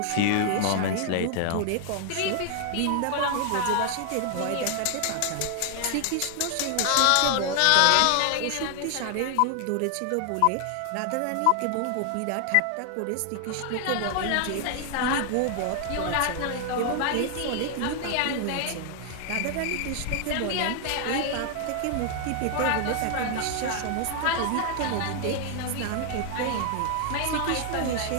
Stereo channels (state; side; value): different; both; correlation 0.00